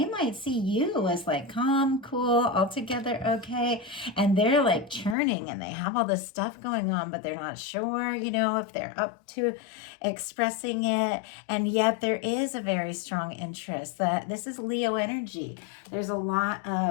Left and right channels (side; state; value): right; drops out; at 5.2 s